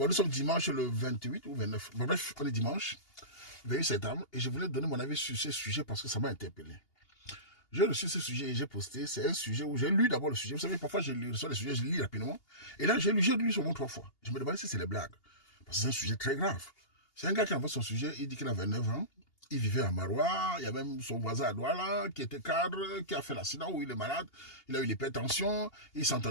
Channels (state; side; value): late; right; 2.8 ms